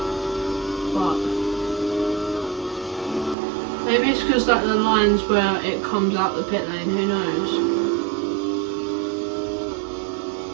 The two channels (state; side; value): drops out; left; at 3.4 s